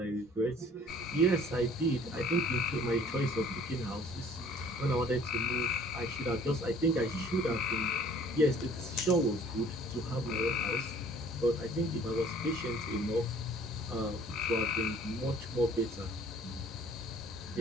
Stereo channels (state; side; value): normal; both; correlation 0.53